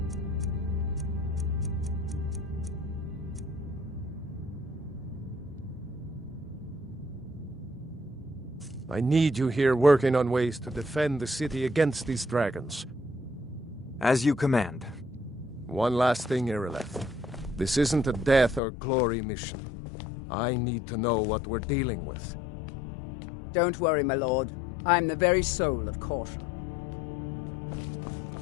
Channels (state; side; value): drops out; right; at 18.6 s